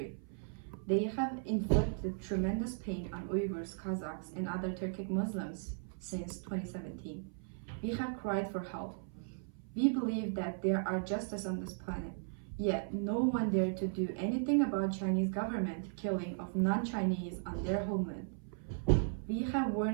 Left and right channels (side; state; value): left; silent; 53 dB below the other